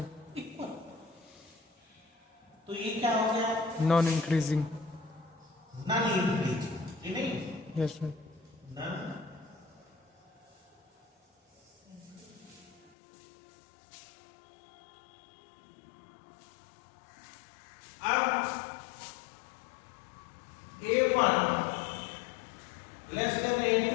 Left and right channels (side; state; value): right; drops out; at 12.9 s